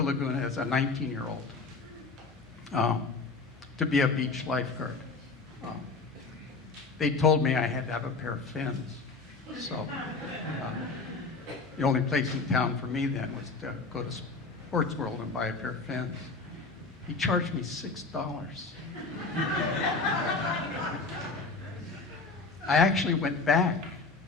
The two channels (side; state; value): right; quieter; 4.0 dB